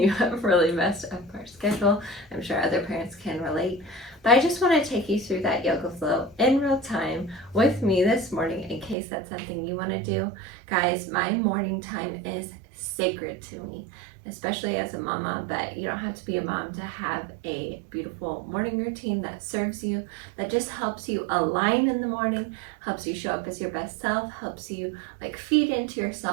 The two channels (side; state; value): left; drops out; at 9.0 s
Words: have really messed up our schedule. I'm sure other parents can relate. But I just want to take you through that yoga flow in real time with me this morning in case that's something you want to do. Guys, my morning time is sacred to me, especially as a mama, but you don't have to be a mom to have a beautiful morning routine that serves you, that just helps you align in the morning, helps you show up as your best self, helps you feed into